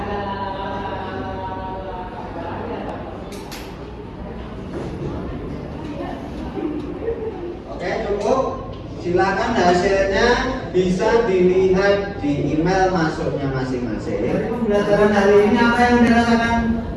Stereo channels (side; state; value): both; identical; correlation 1.00